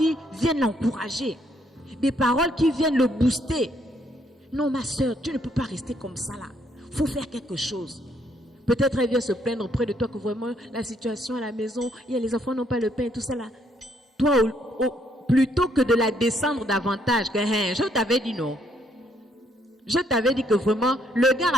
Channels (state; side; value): normal; both; correlation 0.70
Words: viennent l'encourager. Des paroles qui viennent le booster. Non, ma soeur, tu ne peux pas rester comme ça là. Il faut faire quelque chose. Peut-être elle vient se plaindre auprès de toi que vraiment la situation à la maison, les enfants n'ont pas le pain et tout ça là. Toi, plutôt que de la descendre davantage. Que, je t'avais dit non. Je t'avais dit que vraiment, le gars